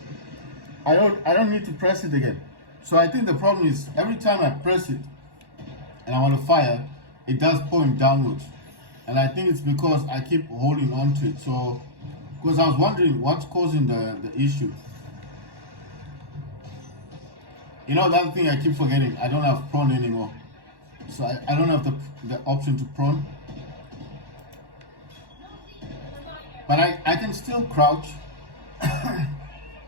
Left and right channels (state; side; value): late; left; 1.1 ms